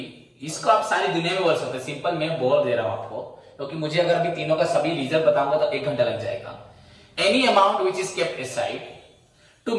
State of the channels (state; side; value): identical; both; correlation 1.00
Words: इसको आप सारी दुनिया में बोल सकते हैं, सिंपल मैं बोल दे रहा हूं आपको, क्योंकि मुझे अगर अभी तीनों का सभी रिजर्व बताऊंगा तो 1 घंटा लग जाएगा। Any amount which is kept aside to